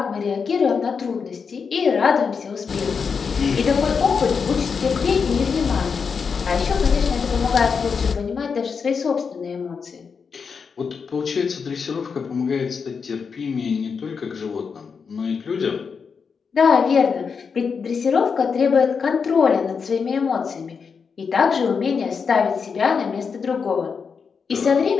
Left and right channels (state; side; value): quieter; right; 5.8 dB